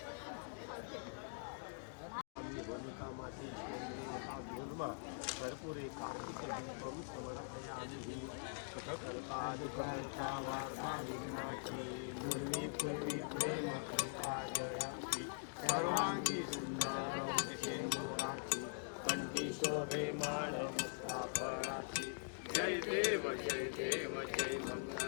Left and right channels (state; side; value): silent; right; digital silence